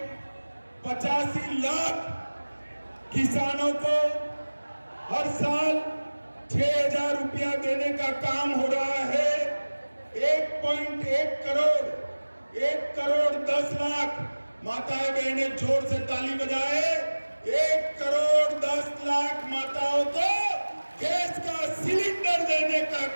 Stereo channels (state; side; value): inverted; both; correlation -1.00